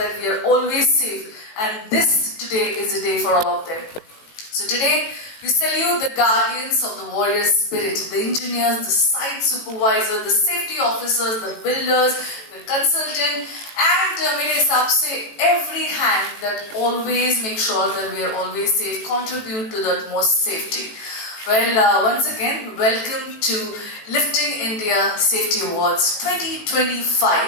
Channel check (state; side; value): late; right; 18 ms